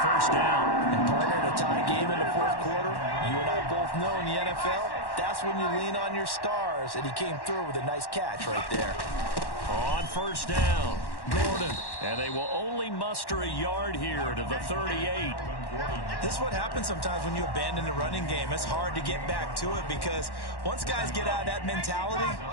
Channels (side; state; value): right; late; 1.1 ms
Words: first down. And partner, in a tie game in the fourth quarter, you and I both know in the NFL, that's when you lean on your stars. And he came through with a nice catch right there. On first down, Gordon. And they will only muster a yard here to the 38. This is what happens sometimes when you abandon the running game. It's hard to get back to it because once guys get out of that mentality